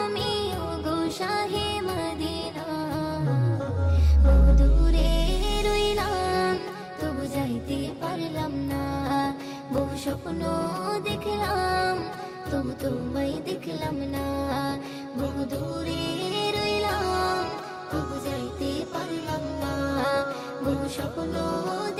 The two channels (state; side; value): identical; both; correlation 1.00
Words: ওগো শাহে মদিনা। বহু দূরে রইলাম তবু যাইতে পারলাম না, বহু স্বপ্ন দেখলাম তবু তোমায় দেখলাম না। বহু দূরে রইলাম তবু যাইতে পারলাম না, বহু স্বপ্ন